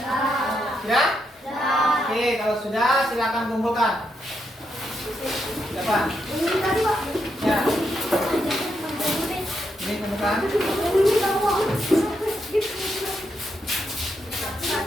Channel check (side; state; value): both; normal; correlation 0.81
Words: Sudah? Oke, kalau sudah silakan kumpulkan. Siapa? Ya. Ini kumpulkan.